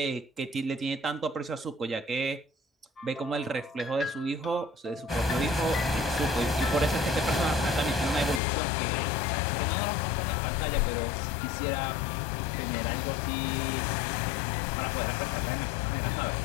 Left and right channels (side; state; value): right; drops out; at 8.4 s